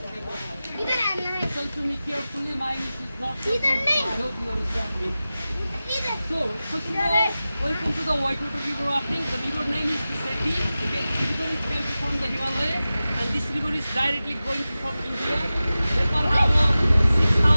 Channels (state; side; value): inverted; both; correlation -0.95